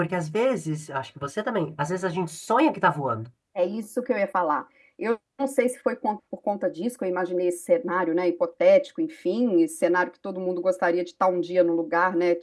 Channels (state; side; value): identical; both; correlation 1.00